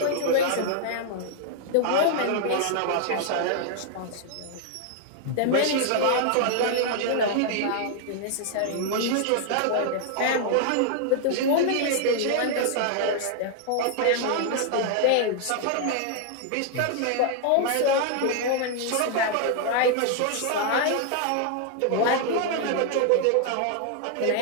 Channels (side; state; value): both; different; correlation 0.00